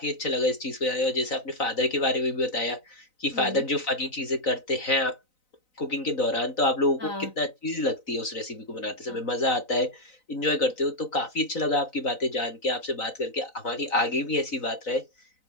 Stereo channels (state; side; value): late; right; 3.9 ms